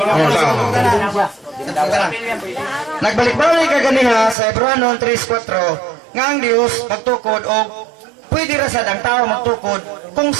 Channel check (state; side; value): drops out; left; at 4.4 s